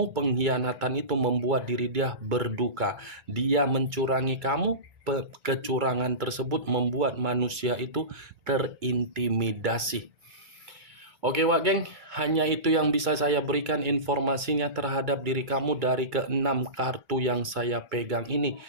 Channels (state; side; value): late; left; 2.3 ms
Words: pengkhianatan itu membuat diri dia berduka. Dia mencurangi kamu, kecurangan tersebut membuat manusia itu terintimidasi. Oke Wak Geng, hanya itu yang bisa saya berikan informasinya terhadap diri kamu dari ke-6 kartu yang saya pegang ini.